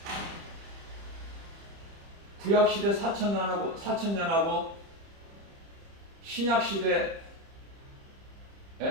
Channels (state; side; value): late; left; 30 ms